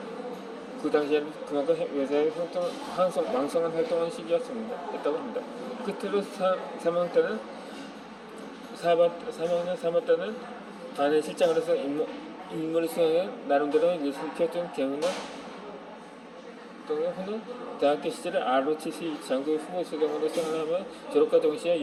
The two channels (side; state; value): both; identical; correlation 1.00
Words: 그 당시에는 그만큼 외세의 왕성한 활동한 시기였다고 합니다. 끝으로 3학년 때는 3학년 반에 실장을 해서 인물을 수행해 나름대로 예술 키웠던 경우는 후는 대학교 시절에 ROTC 장교 후보 수령으로 생활하며 졸업과 동시에